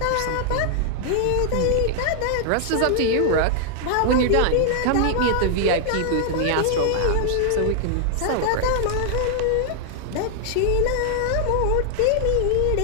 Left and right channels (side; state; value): both; different; correlation 0.00